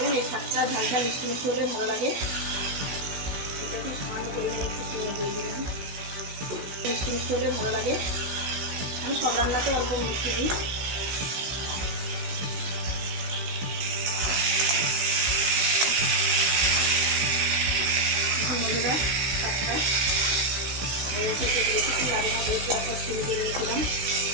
এই শাকটা ঝাল ঝাল মিষ্টি মিষ্টি হলে ভালো লাগে। এটা একটু সামান্য পরিমাণে একটু চিনি দিয়ে দিলাম, মিষ্টি মিষ্টি হলে ভালো লাগে। আমি সব রান্নাতে অল্প মিষ্টি দিই। এখন বন্ধুরা শাকটা রেখেছি, লাগে না যেহেতু একটা চিনি দিয়ে দিয়েছিলাম।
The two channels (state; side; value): late; left; 16 ms